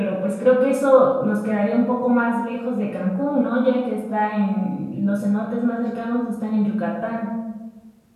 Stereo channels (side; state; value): both; identical; correlation 1.00